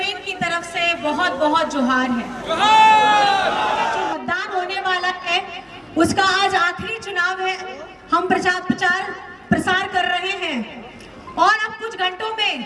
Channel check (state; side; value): identical; both; correlation 1.00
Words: की तरफ से बहुत बहुत जोहार है। जो मतदान होने वाला है उसका आज आखिरी चुनाव है। हम प्रचार प्रसार कर रहे हैं और अब कुछ घंटों